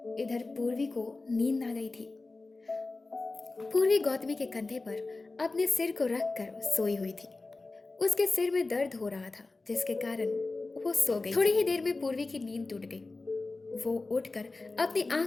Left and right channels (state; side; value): quieter; right; 3.5 dB